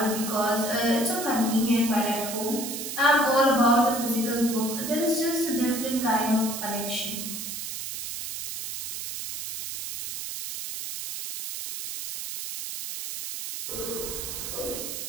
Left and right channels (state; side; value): noise; right; hiss, 6 dB below the sound